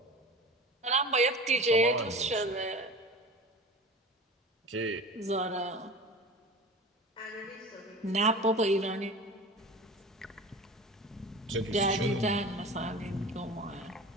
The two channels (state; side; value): normal; both; correlation 0.35